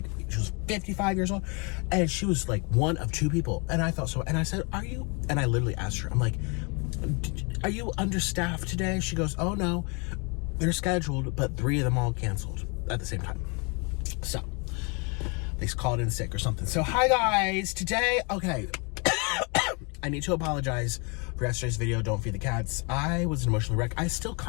she was 55 years old, and she was like one of 2 people. And I thought so. And I said, "Are you?" And I literally asked her, I'm like, "Are you understaffed today?" She goes, "Oh no, they're scheduled, but 3 of them all canceled at the same time." So they called in sick or something. So hi guys, today, okay. I need to apologize for yesterday's video, Don't Feed the Cats. I was an emotional wreck. I still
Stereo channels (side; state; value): right; quieter; 32.5 dB